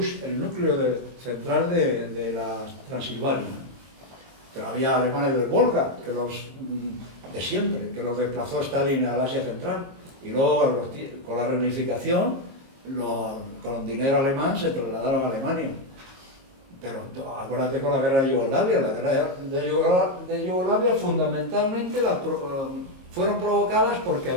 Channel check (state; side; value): late; left; 22 ms